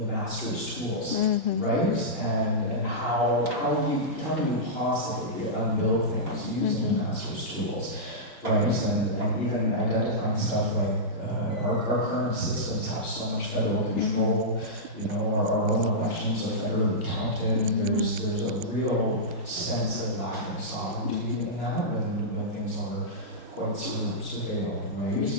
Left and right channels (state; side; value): normal; both; correlation -0.13